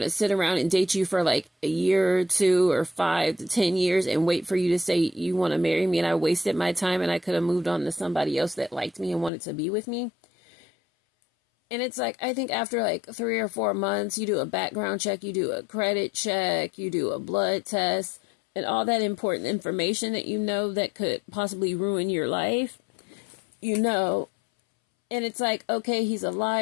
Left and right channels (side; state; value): right; drops out; at 9.3 s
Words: to sit around and date you for like a year or 2 or 5 to 10 years and wait for you to say you want to marry me. And I wasted my time and I could have moved on to somebody else that liked me and wanted to be with me. And it's like, I think after like 3 or 4 months, you do a background check, you do a credit check, you do a blood test, and all that important information that you know that could possibly ruin your life, you know. And it's like, okay, he's a